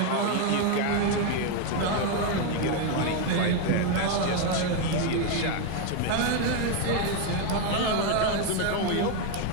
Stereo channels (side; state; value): both; different; correlation 0.01